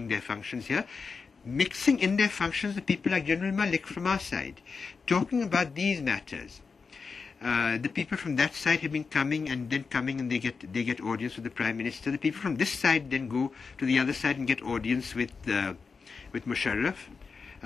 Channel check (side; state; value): right; quieter; 5.0 dB